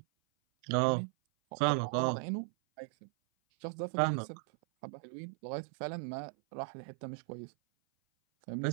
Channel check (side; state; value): left; silent; 53 dB below the other